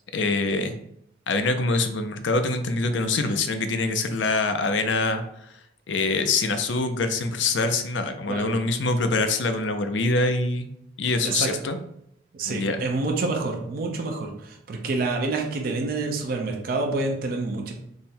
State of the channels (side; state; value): both; normal; correlation 0.33